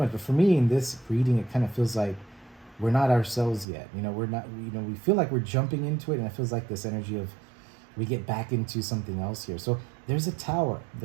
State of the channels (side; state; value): left; drops out; at 3.7 s